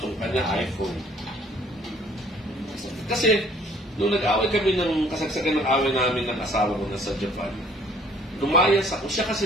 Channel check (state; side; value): normal; both; correlation 0.57